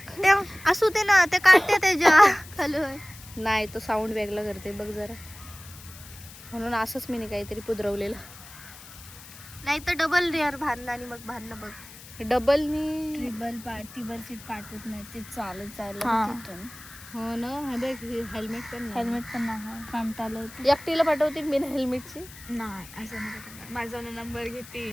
ते असू दे ना, ते काढते त्याच्या खाली. नाही, तो साऊंड वेगळा करते बघ जरा. म्हणून असंच मी काहीतरी पुदरवलेलं. नाही तर डबल रेअर भांडणं आणि मग भांडणं बघ. डबलनी टिबल सीट पाठवत नाही ते चालत हा. तिथून. हो ना. हे बघ, हेल्मेट पण नाही. हेल्मेट पण नाही कंटाळलं. एकटीला पाठवते मी हेल्मेटची. नाही असं नाही. माझा नंबर घेते.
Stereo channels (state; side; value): noise; left; hiss, 18 dB below the sound